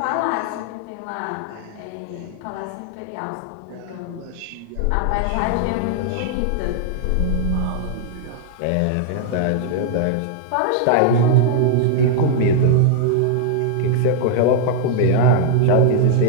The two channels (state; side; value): different; both; correlation -0.01